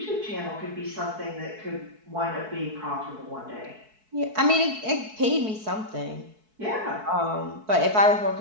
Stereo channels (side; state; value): left; late; 4.6 ms